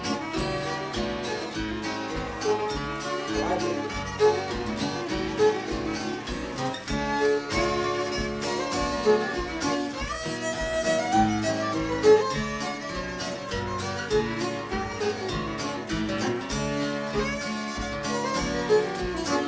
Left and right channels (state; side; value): identical; both; correlation 1.00